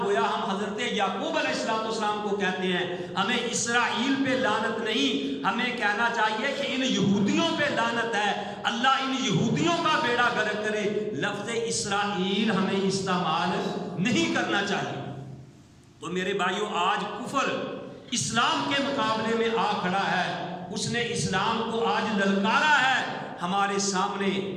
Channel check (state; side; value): identical; both; correlation 1.00